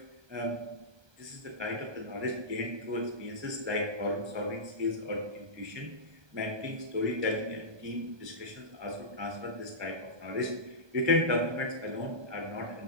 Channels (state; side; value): late; left; 1.2 ms